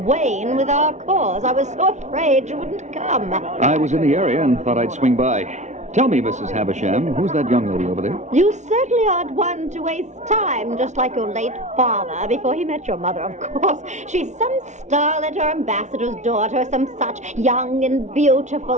Wayne with our cause. I was so afraid you wouldn't come. I was in the area and thought I'd swing by. Tell me, Mrs. Havisham, who's that young lady over there? You certainly aren't one to waste time, just like your late father, before he met your mother, of course. She's some starlet or ambassador's daughter, some such, young and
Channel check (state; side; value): late; left; 0.34 ms